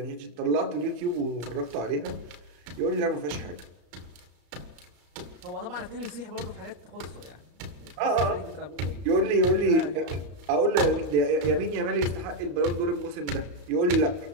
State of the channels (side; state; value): left; late; 34 ms